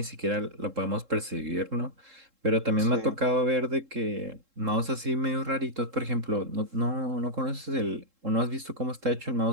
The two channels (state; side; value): late; left; 3.7 ms